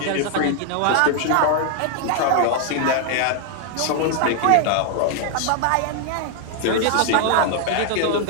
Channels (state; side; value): different; both; correlation 0.00